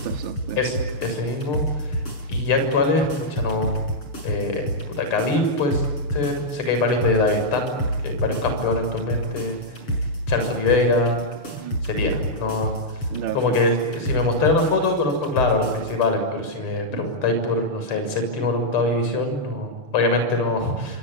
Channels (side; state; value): right; late; 6.8 ms